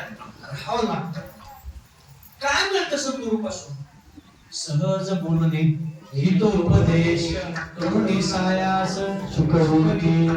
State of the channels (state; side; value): identical; both; correlation 1.00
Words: राहावं लागतं. काय मिळतं सद्गुरू पासून? सहज बोलणे, हितोपदेश, करुणी सायास, सुखरूपी.